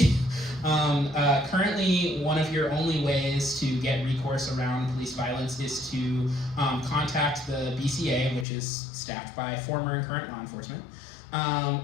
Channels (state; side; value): drops out; right; at 8.5 s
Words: Currently, one of your only ways to get recourse around police violence is to contact the BCA, which is staffed by former and current law enforcement,